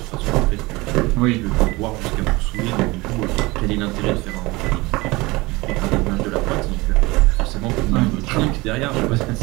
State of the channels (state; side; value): quieter; left; 22.6 dB